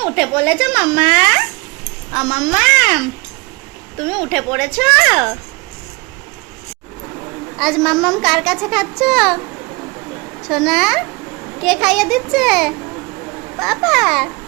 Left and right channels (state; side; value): quieter; left; 26.3 dB